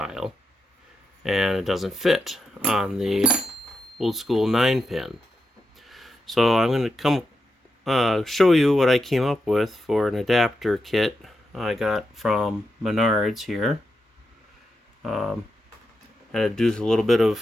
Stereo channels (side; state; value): both; normal; correlation 0.86